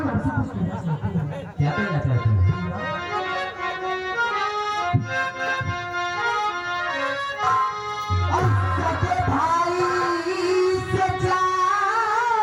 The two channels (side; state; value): both; identical; correlation 1.00